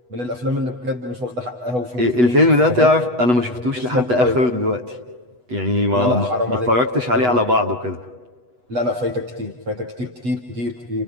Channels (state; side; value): late; left; 8.1 ms